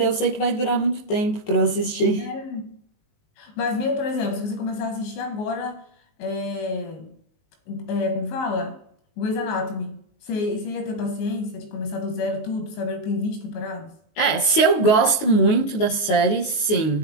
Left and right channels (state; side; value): late; right; 19 ms